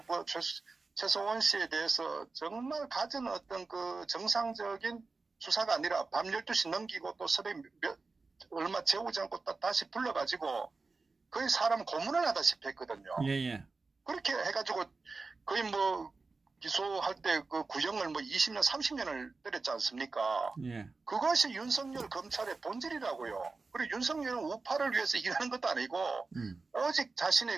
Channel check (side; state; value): left; quieter; 4.0 dB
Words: 최소원 씨에 대해서 정말 가진 어떤 정상적인 수사가 아니라 밤 12시 넘기고 또 새벽 얼마 재우지 않고 다시 불러가지고 거의 사람 고문을 하다시피 했거든요. 예, 예. 그렇게 해가지고 거의 기소할 때 구형을 20년, 30년을 때렸지 않습니까? 예. 그것이 윤석열 검찰의 본질이라고요. 그리고 윤석열은 우파를 위해서 일하는 것도 아니고 오직